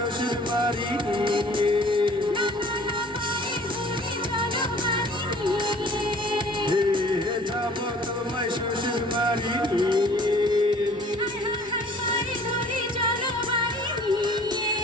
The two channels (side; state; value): both; normal; correlation 0.51